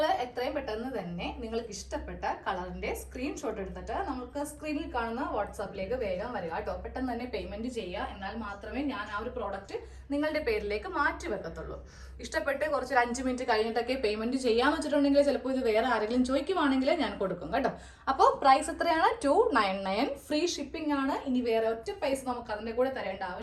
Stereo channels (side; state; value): both; identical; correlation 1.00